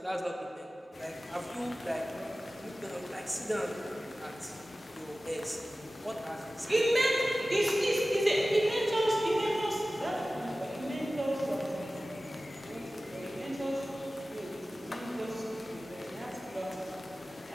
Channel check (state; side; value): normal; both; correlation 0.96